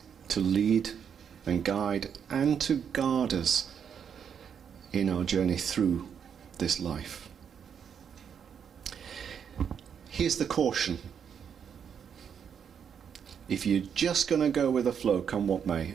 to lead and guide and to guard us in our journey through this life. Here's the caution. If you're just going to go with the flow, come what may,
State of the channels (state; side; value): quieter; left; 7.6 dB